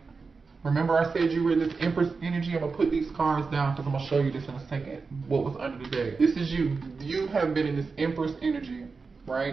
Remember I said you were in this Empress energy? I'm going to put these cards down because I'm going to show you this in a second, what was under the deck. This is you. You have been in this Empress energy,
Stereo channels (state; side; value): quieter; left; 4.6 dB